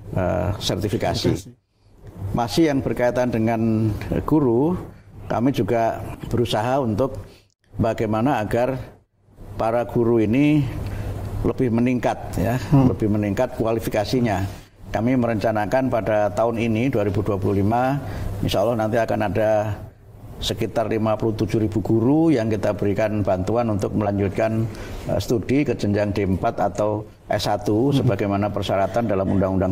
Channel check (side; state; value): both; identical; correlation 1.00